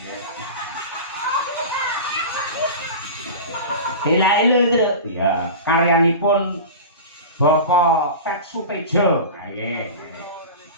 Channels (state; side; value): inverted; both; correlation -0.31